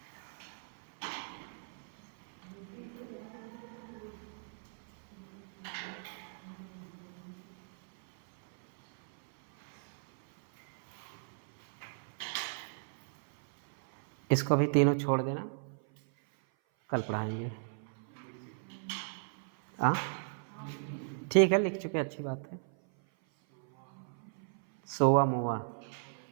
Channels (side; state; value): left; silent; 54 dB below the other